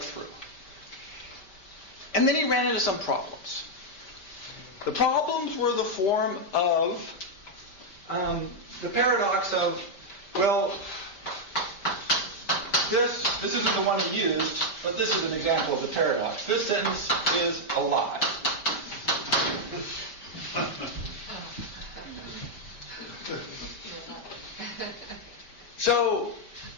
And then he ran into some problems. The problems were the form of the paradox of, well, this isn't the one he used, but this is an example of the paradox. This sentence is a lie. So,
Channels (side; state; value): right; late; 5.1 ms